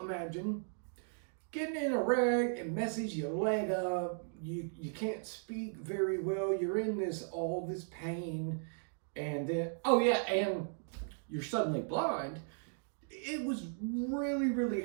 getting in a wreck and messes your leg up, you can't speak very well, you're in all this pain, and then, oh yeah, and you're suddenly blind. It was really, really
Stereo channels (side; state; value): left; silent; digital silence